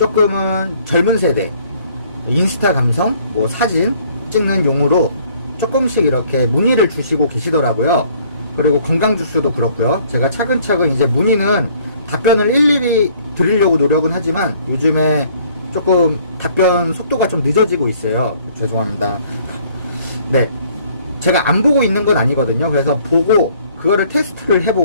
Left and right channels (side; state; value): both; inverted; correlation -0.59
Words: 젊은 세대 인스타 감성, 사진 찍는 용으로 조금씩 이렇게 문의를 주시고 계시더라고요. 그리고 건강 주스도 그렇고요. 제가 차근차근 이제 문의는 답변을 일일이 드리려고 노력은 하지만 요즘에 조금 답변 속도가 좀 늦어지고 있어요. 죄송합니다. 네, 제가 안 보고 있는 건 아니거든요. 그래서 보고 그거를 테스트를